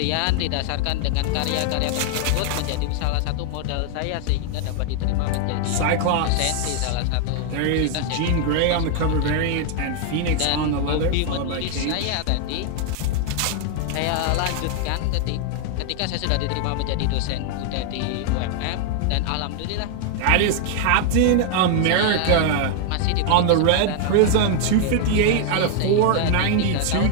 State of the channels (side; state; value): both; different; correlation 0.00